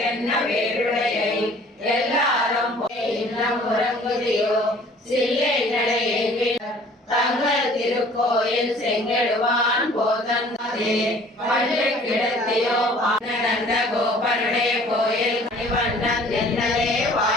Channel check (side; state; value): both; normal; correlation 0.52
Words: வேருடையை எல்லாரும் போய் இன்னும் உறங்குதியோ சில்லை நடையை தங்கள் திருக்கோயில் செங்கெடுவான் போதந்தே பள்ளி கிடத்தியோ நடந்த கோபனுடைய கோயில் கணிவண்ணன் என்னலே